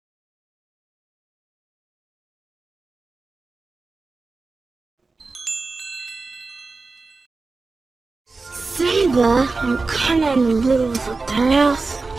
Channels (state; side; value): quieter; left; 3.9 dB